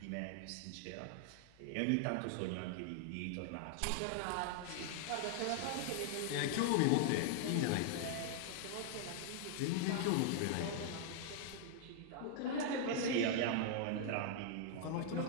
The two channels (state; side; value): different; both; correlation 0.00